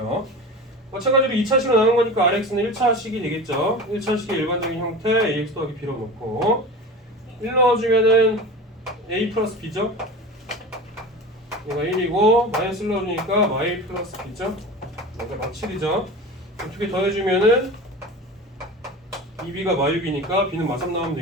마찬가지로 2차식으로 나눈 거니까 RX는 1차식이 되겠죠. 1차식의 일반적인 형태 AX 더하기 B로 놓고 1 넣어주면은 A 플러스 B죠. 얘가 1이고 마이너스 1 넣어주니까 Y 플러스 B죠. 그러니까 마칠이죠. 두 개 더해주면은 2B가 마유비니까 B는 마3 나오면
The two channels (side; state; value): both; normal; correlation 0.32